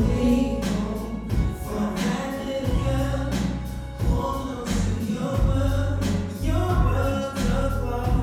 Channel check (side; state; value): both; identical; correlation 1.00